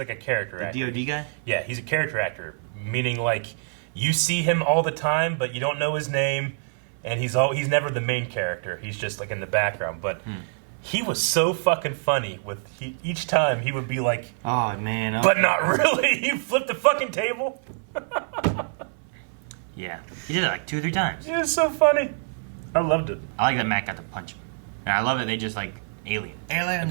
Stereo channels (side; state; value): left; silent; 58 dB below the other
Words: a character actor. The DOD guy? Yeah, he's a character actor, meaning like you see him all the time, but you don't know his name, and he's never the main character. He's just like in the background. But he was so fucking funny with each time he would be like, oh man, but not really. He flipped the fucking table. Yeah, he did it like 2 or 3 times. It was so funny. I loved it. I like that Matt got to punch him. And I love that they just like aliens.